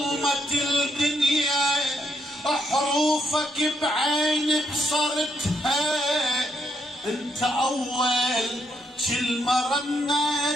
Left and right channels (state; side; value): normal; both; correlation 0.77